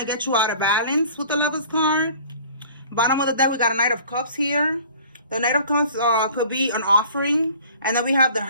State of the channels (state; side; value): inverted; both; correlation -0.48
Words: to get you out of balance with the Lovers card. Bottom of the deck, we got a Knight of Cups here. The Knight of Cups could be an offering. And then we have the